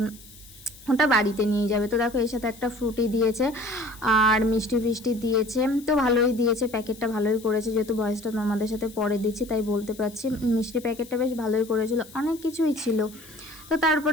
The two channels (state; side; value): noise; left; hiss, 21 dB below the sound